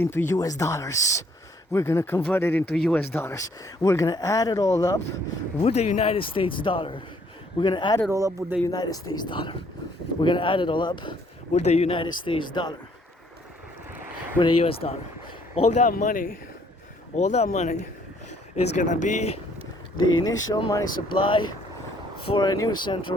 US dollars. We're gonna convert it into US dollars. We're gonna add it all up with the United States dollar. We're gonna add it all up with the United States dollar. We're gonna add it all up with the United States dollar. With the US dollar. All that money is gonna be the initial money supply for a new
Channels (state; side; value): normal; both; correlation 0.64